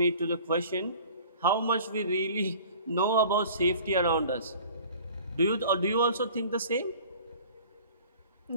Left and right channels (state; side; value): inverted; both; correlation -0.46